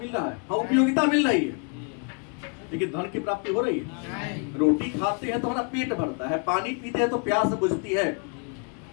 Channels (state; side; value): quieter; right; 37.6 dB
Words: रहा है, हाँ उपयोगिता मिल रही है, लेकिन धन की प्राप्ति हो रही है। रोटी खाते हैं तो हमारा पेट भरता है, पानी पीते हैं तो प्यास बुझती है,